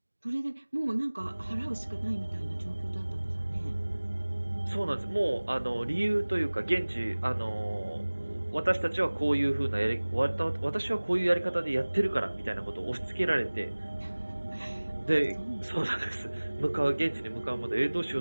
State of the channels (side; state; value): both; inverted; correlation -1.00